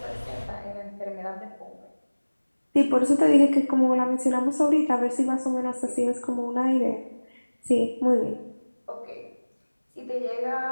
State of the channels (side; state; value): both; inverted; correlation -1.00